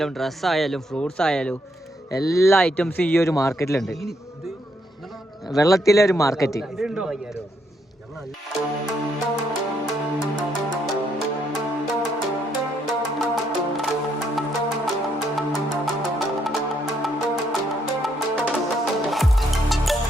ഡ്രസ്സായാലും ഫ്രൂട്ട്സ് ആയാലും എല്ലാ ഐറ്റംസും ഈ ഒരു മാർക്കറ്റിലുണ്ട്. വെള്ളത്തിലെ ഒരു മാർക്കറ്റ്.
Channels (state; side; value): normal; both; correlation 0.75